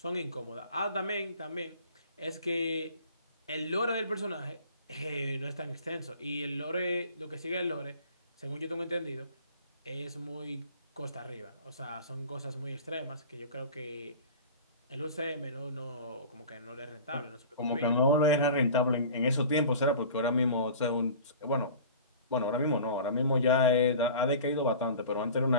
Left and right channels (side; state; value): both; inverted; correlation -0.41